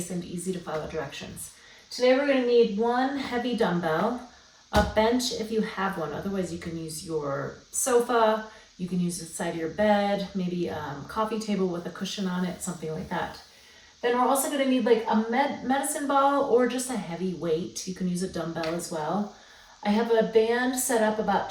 and easy to follow directions. Today we're going to need one heavy dumbbell, a bench if you have one. Otherwise you can use your sofa, you can use the side of your bed, maybe a coffee table with a cushion on it, something like that. Then we're also going to need like a medicine ball or just a heavy weight. You can use a dumbbell as well. I have a band set up about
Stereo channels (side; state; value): both; identical; correlation 1.00